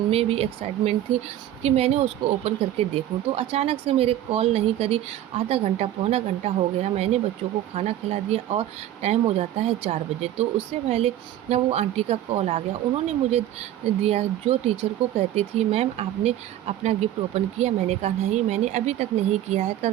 में भी एक्साइटमेंट थी कि मैंने उसको ओपन करके देखूं। तो अचानक से मेरे कॉल नहीं करी। आधा घंटा पौना घंटा हो गया, मैंने बच्चों को खाना खिला दिया और टाइम हो जाता है 4 बजे। तो उससे पहले ना वो आंटी का कॉल आ गया। उन्होंने मुझे दिया, जो टीचर को कहती थी मैम आपने अपना गिफ्ट ओपन किया। मैंने कहा नहीं, मैंने अभी तक नहीं किया है,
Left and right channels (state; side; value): quieter; left; 12.5 dB